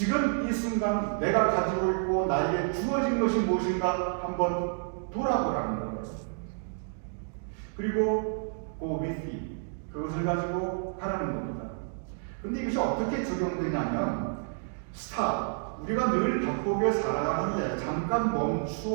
내가 가지고 있고 나에게 주어진 것이 무엇인가 한번 돌아보라는 거예요. 그리고 go with it 그것을 가지고 가라는 겁니다. 근데 이것이 어떻게 적용되냐면 stop 우리가 늘 바쁘게 살아가는데 잠깐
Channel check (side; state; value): left; silent; digital silence